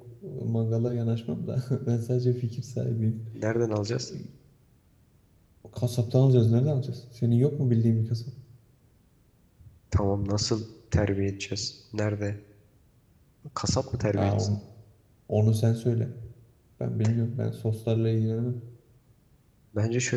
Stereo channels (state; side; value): identical; both; correlation 1.00